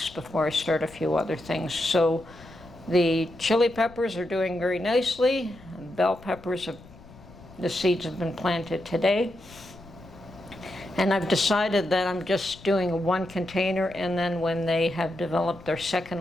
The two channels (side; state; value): left; noise; rumble, 21 dB below the sound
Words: before I start a few other things. So the chili peppers are doing very nicely. Bell peppers, the seeds have been planted today. And I've decided that I'm just doing one container, and then when they have developed their